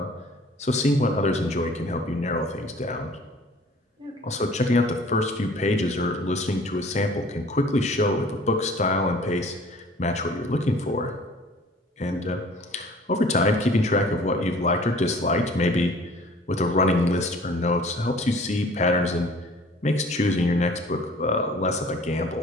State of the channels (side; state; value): both; normal; correlation 0.50